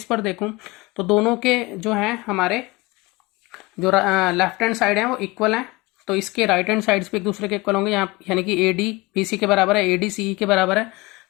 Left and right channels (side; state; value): right; quieter; 22.8 dB